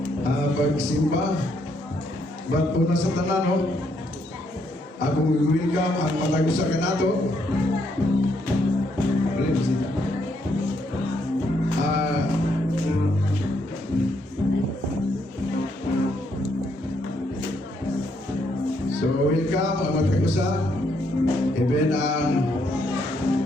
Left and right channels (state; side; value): normal; both; correlation 0.74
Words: pagsimba. Ba't po na sa tanan, no? Akong welcome ang matagusa ka nato. So, welcome ang matagusa. Even ang